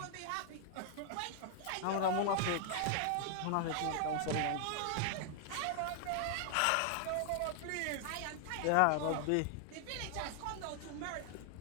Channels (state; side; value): different; both; correlation 0.00